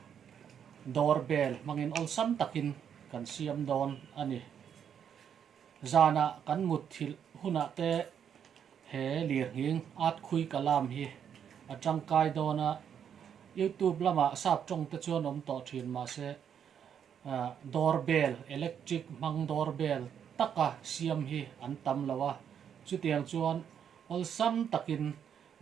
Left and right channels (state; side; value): quieter; left; 8.3 dB